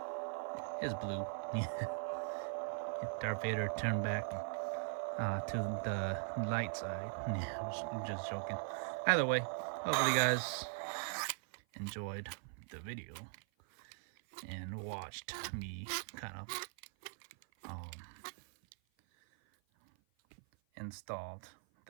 It's blue. Darth Vader turned back to the light side. Yeah, just joking. Either way, hopefully you guys enjoyed the video and watched me kind of installed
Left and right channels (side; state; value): left; silent; 51 dB below the other